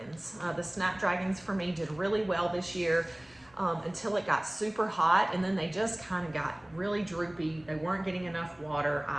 The Snapdragons for me did really well this year until it got super hot, and then they just kind of got really droopy. They weren't getting enough water.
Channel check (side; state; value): left; noise; rumble, 29 dB below the sound